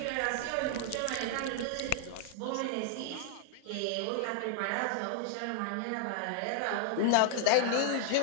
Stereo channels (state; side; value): different; both; correlation 0.00